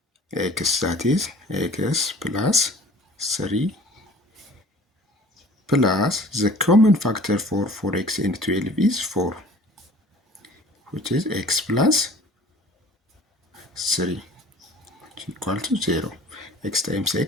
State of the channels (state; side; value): normal; both; correlation 0.47